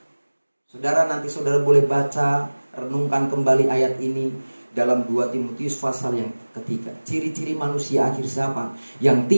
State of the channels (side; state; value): both; inverted; correlation -1.00